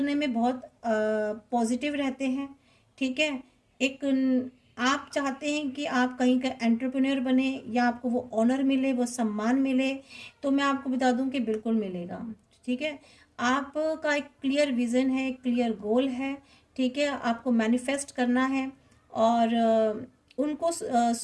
में बहुत पॉजिटिव रहते हैं। ठीक है, एक आप चाहते हैं कि आप कहीं का एंटरप्रेन्योर बने, या आपको वो ऑनर मिले, वो सम्मान मिले, तो मैं आपको बता दूं कि बिल्कुल मिलेगा। ठीक है, आपका एक क्लियर विज़न है, क्लियर गोल है। ठीक है, आपको मैनिफेस्ट करना है, और उनको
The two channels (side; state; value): both; identical; correlation 1.00